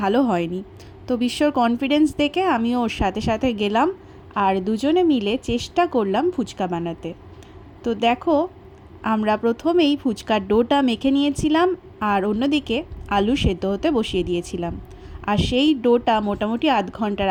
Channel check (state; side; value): identical; both; correlation 1.00